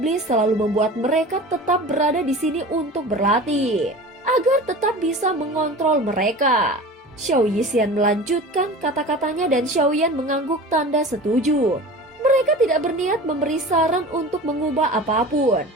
selalu membuat mereka tetap berada di sini untuk berlatih, agar tetap bisa mengontrol mereka. Xiaoyixian melanjutkan kata-katanya dan Xiaoyan mengangguk tanda setuju. Mereka tidak berniat memberi saran untuk mengubah apapun,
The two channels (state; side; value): normal; both; correlation 0.36